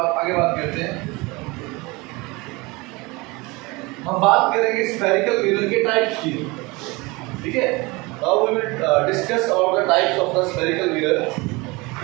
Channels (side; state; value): left; quieter; 24.5 dB